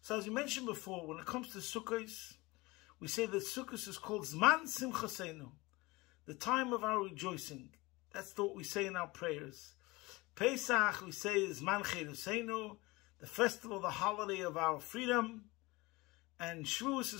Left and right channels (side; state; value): right; quieter; 22.5 dB